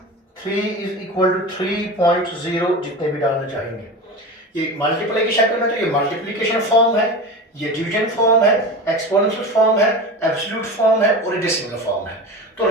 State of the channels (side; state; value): both; normal; correlation 0.29